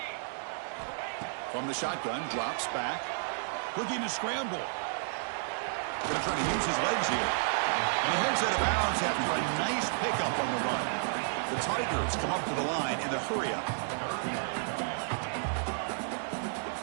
From the shotgun, drops back. Looking to scramble. Going to try to use his legs here. And he heads out of bounds after a nice pickup on the run. The Tigers come up to the line in the hurry-up.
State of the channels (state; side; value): silent; left; digital silence